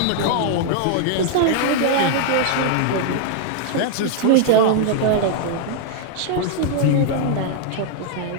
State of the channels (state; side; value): different; both; correlation 0.00